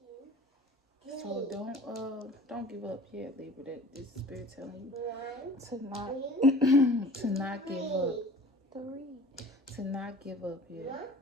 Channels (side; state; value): both; normal; correlation 0.45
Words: 3. So don't give up yet, Libra. That this spirit telling you to not to not give up. 3. To not give up yet.